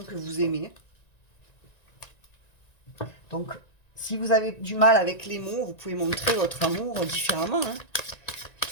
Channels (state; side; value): late; right; 1.9 ms